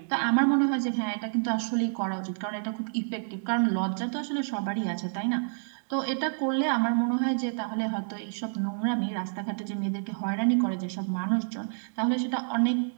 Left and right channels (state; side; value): silent; left; digital silence